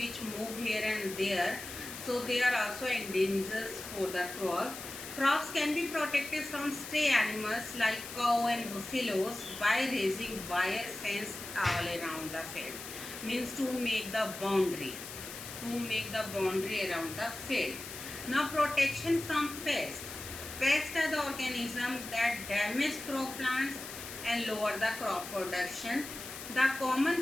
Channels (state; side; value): noise; left; hiss, 10 dB below the sound